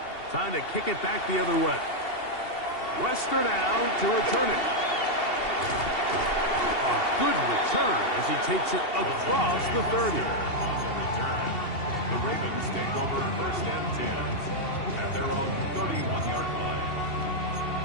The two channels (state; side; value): late; right; 2.7 ms